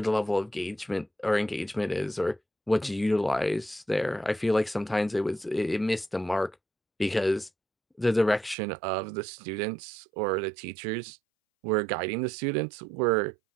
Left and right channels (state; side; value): drops out; left; at 8.6 s